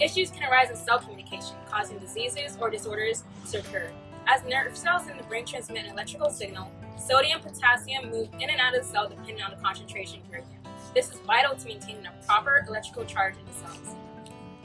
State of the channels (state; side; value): identical; both; correlation 1.00